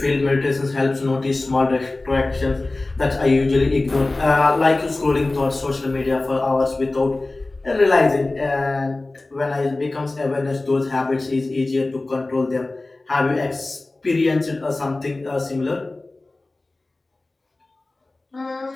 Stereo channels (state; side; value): quieter; right; 3.0 dB